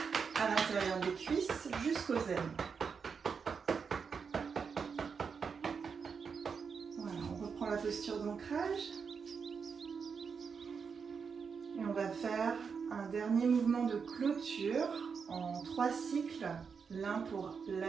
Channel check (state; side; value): quieter; left; 5.9 dB